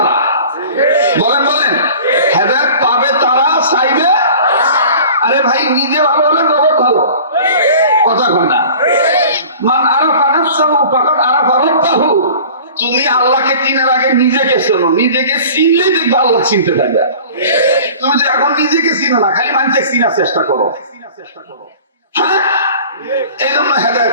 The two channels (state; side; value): inverted; both; correlation -0.43